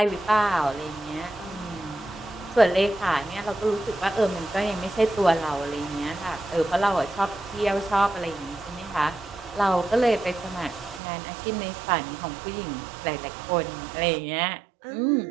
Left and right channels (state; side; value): drops out; left; at 11.0 s